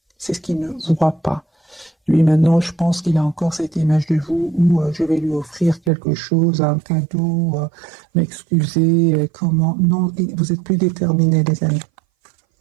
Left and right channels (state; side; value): drops out; left; at 5.9 s